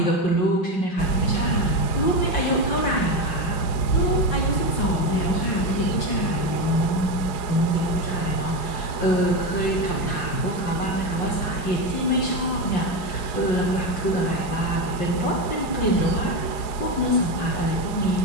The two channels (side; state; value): right; late; 4.9 ms